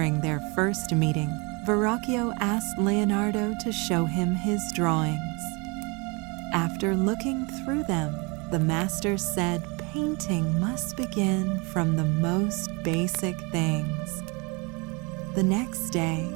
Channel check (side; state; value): left; quieter; 29.1 dB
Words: their first meeting, Verrocchio asked Leonardo to show him his drawings. After looking through them, the master said painting must begin from the most basic things. The next day,